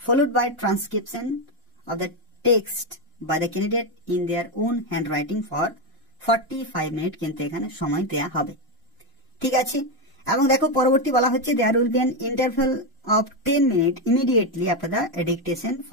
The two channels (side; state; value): both; normal; correlation 0.08